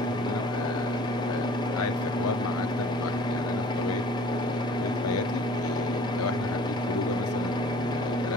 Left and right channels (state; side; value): normal; both; correlation 0.49